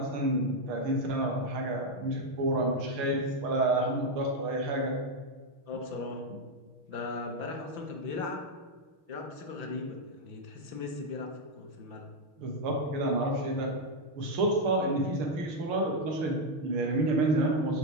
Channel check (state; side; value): late; left; 6.7 ms